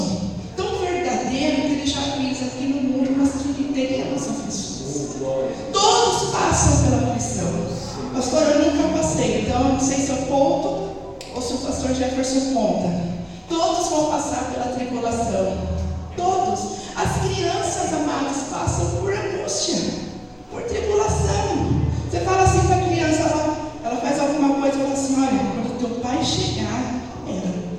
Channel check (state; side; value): identical; both; correlation 1.00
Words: tão verdadeiro, que ele já fez aqui no mundo, mas que ele teremos aflições. Todos passam pela aflição. Pastor, eu nunca passei, então eu não sei se eu conto ou se o pastor Jefferson conta. Todos vão passar pela tribulação. Todos. As crianças, amadas, passam por angústia, por tribulação. Você fala assim para a criança, ela faz alguma coisa e fala assim, olha, quando teu pai chegar,